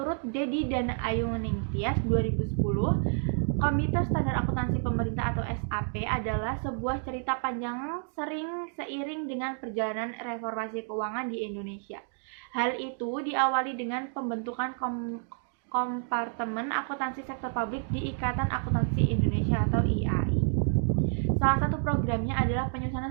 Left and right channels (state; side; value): silent; left; 58 dB below the other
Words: Dedi dan Ayu Ningtyas 2010, Komite Standar Akuntansi Pemerintah atau SAP adalah sebuah cerita panjang sering seiring dengan perjalanan reformasi keuangan di Indonesia. Hal itu diawali dengan pembentukan kompartemen akuntansi sektor publik di Ikatan Akuntansi Indonesia atau IAI. Salah satu programnya adalah